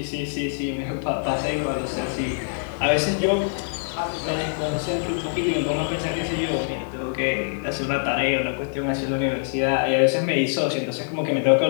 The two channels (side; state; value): right; silent; digital silence